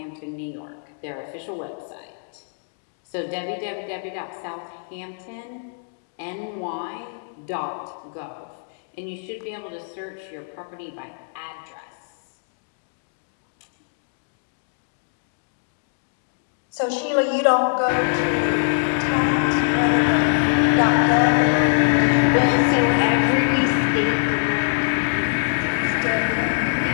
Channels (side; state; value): right; silent; digital silence